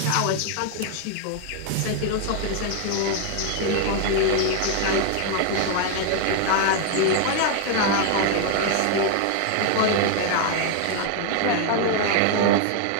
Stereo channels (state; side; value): different; both; correlation 0.00